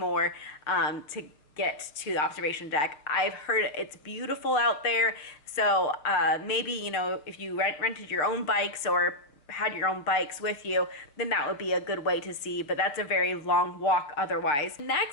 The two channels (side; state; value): right; late; 6.9 ms